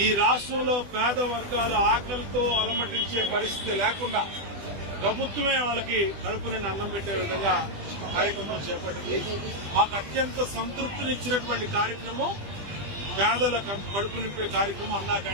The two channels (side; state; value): left; late; 20 ms